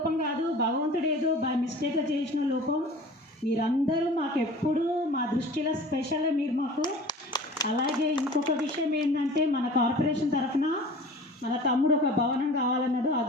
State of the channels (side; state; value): both; normal; correlation 0.42